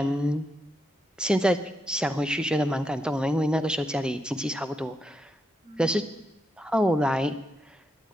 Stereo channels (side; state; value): both; normal; correlation 0.83